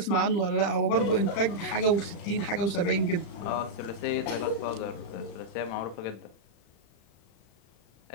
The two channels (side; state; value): right; late; 35 ms